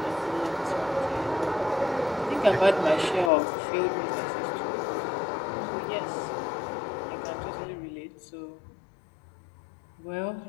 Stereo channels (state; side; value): drops out; right; at 3.3 s